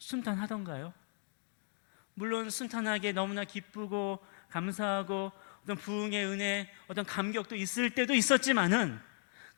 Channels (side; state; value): right; silent; 54 dB below the other